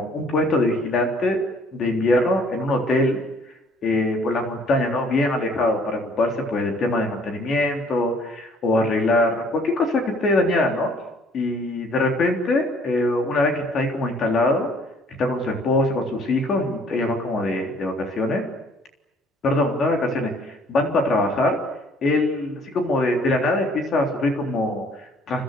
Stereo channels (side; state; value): both; normal; correlation 0.59